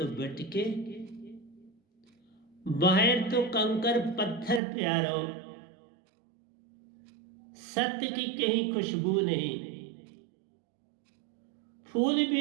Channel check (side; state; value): left; drops out; at 4.6 s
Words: भटके, बाहर तो कंकर पत्थर प्यारो, सत्य की कहीं खुशबू नहीं। फूल